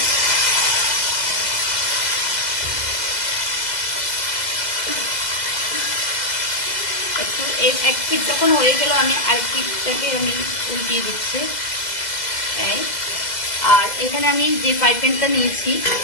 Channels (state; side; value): late; right; 2.0 ms